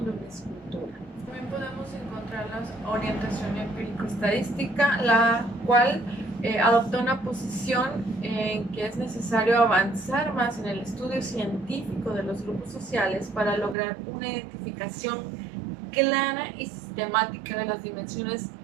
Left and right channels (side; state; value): left; drops out; at 13.8 s